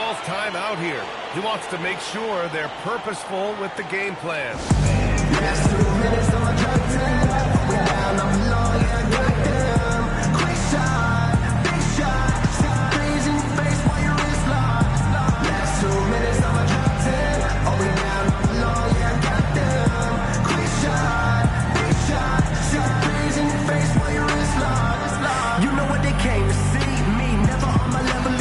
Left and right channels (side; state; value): both; identical; correlation 1.00